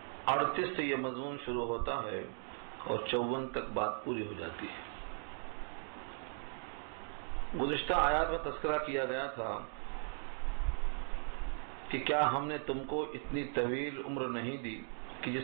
38 سے یہ مضمون شروع ہوتا ہے اور 54 تک بات پوری ہو جاتی ہے. گزشتہ آیات میں تذکرہ کیا گیا تھا کہ کیا ہم نے تم کو اتنی طویل عمر نہیں دی کہ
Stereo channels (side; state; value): left; silent; 52 dB below the other